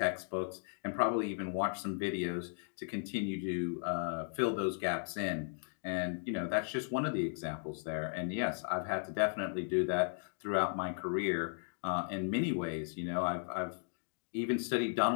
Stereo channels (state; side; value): silent; right; digital silence